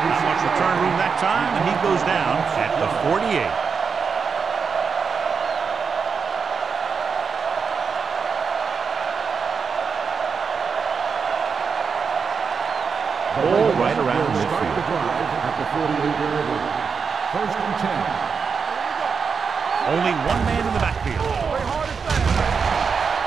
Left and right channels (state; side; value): quieter; left; 5.7 dB